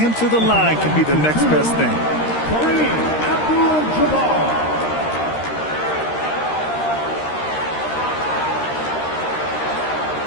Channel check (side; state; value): right; late; 13 ms